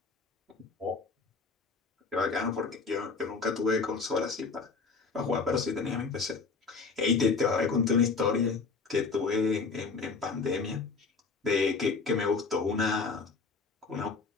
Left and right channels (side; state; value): right; quieter; 4.6 dB